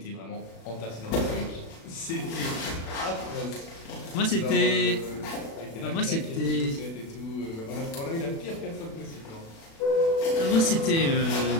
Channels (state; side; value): late; right; 36 ms